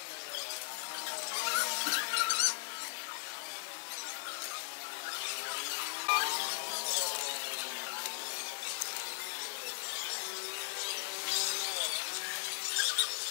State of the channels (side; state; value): right; silent; digital silence